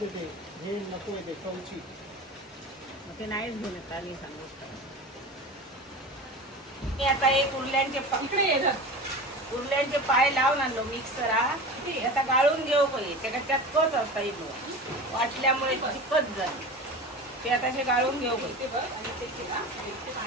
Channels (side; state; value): both; normal; correlation 0.32